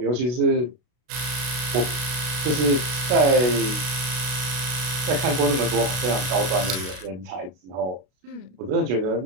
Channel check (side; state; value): left; late; 32 ms